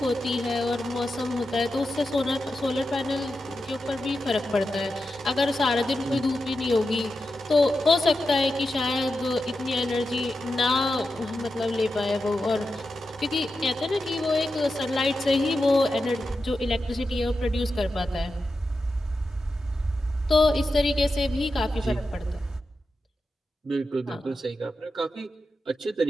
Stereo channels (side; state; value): both; normal; correlation 0.90